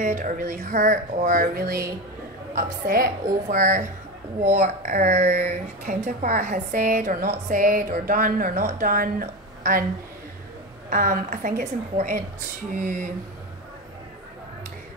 or really hurt or really upset over what our counterpart has said or not said or done or not done, and I think it's important to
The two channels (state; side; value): normal; both; correlation 0.20